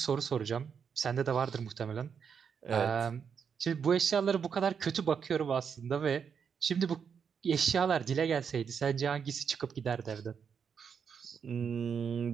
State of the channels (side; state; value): left; quieter; 6.8 dB